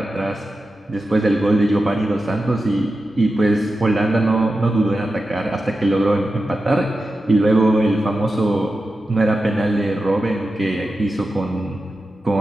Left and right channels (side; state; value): both; normal; correlation 0.91